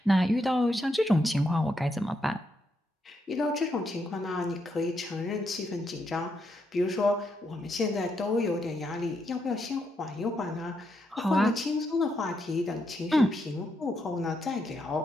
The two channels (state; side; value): normal; both; correlation 0.80